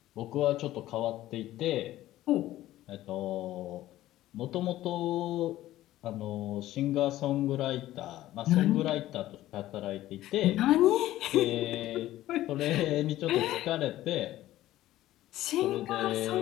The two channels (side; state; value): right; quieter; 14.8 dB